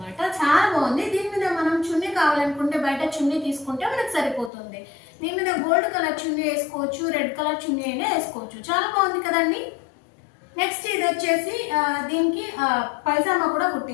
చాలా బాగుంది. దీని మీద మనం చున్నీ కావాలనుకుంటే బయట చున్నీ తీసుకుంటే మనకు సరిపోతుంది. దీని మీద గోల్డ్ కలర్ చున్నీ వేసుకోవచ్చు, రెడ్ కలర్ చున్నీ అయినా వేసుకోవచ్చు. చాలా బాగుంది కదండి. నెక్స్ట్ ఇది వచ్చేసి దీనికి పైజామా కూడా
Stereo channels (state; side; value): drops out; right; at 4.5 s